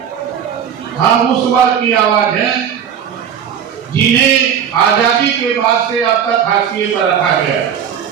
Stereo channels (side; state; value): left; quieter; 8.4 dB